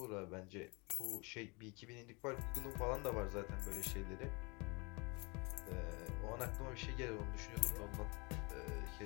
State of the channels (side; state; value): right; quieter; 29.2 dB